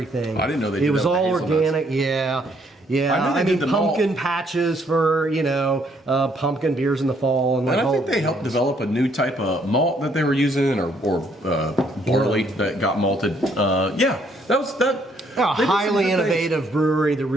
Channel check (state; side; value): normal; both; correlation 0.68